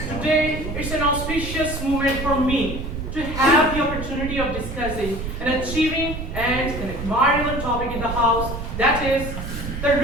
Today, it's an auspicious moment for me to have the opportunity of discussing an achieving and an admirable topic in the House, that is, the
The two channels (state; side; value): noise; right; rumble, 6 dB below the sound